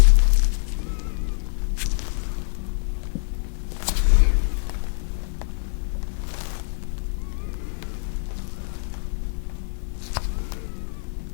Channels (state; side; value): silent; right; digital silence